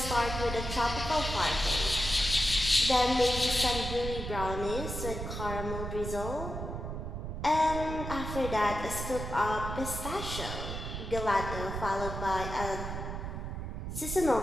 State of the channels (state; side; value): noise; right; rumble, 6 dB below the sound